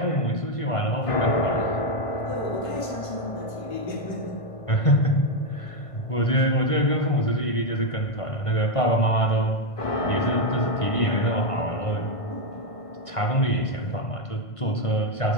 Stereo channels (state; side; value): late; right; 1.5 ms